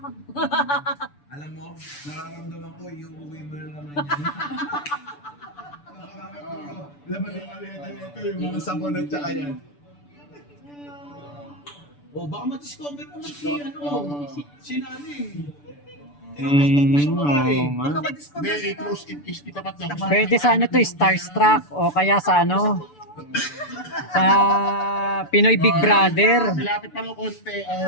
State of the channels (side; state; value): right; late; 6.9 ms